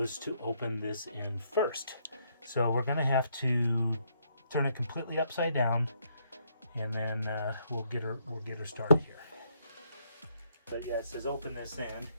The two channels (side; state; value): both; inverted; correlation -0.72